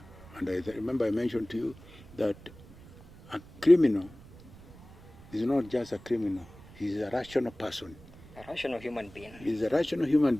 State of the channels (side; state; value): right; noise; rumble, 21 dB below the sound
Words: and I remember I mentioned to you that a criminal is not just a criminal. He's a rational person. A rational human being. He's a rational human